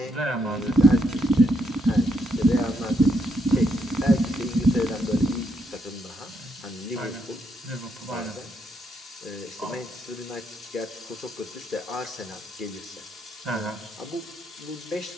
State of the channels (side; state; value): both; normal; correlation 0.77